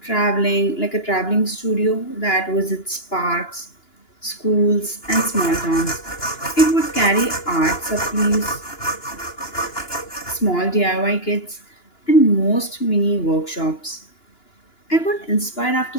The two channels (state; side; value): late; right; 2.9 ms